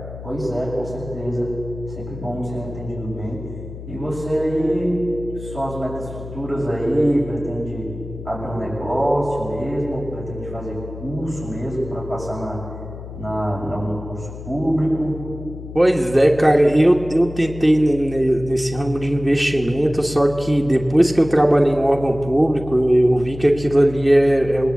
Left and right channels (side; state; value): left; noise; hum, 12 dB below the sound